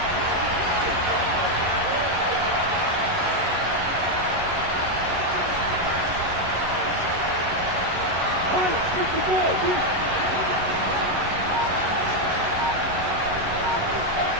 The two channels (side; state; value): left; late; 11 ms